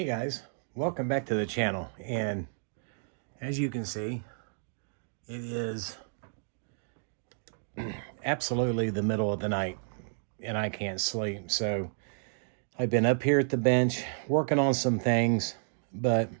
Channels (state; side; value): silent; left; digital silence